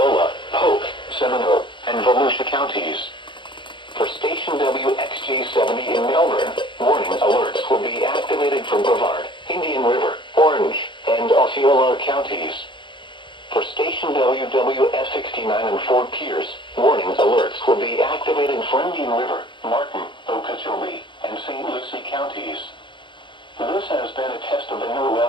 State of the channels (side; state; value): right; late; 0.23 ms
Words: Polk, Seminole, and Volusia counties. For station WXJ70 in Melbourne, warning alerts will be activated for Brevard, Indian River, Orange, and Osceola counties. For station WWF69 in Fort Pierce, warning alerts will be activated for Indian River, Martin, Okeechobee, and St. Lucie counties. This has been a test of the new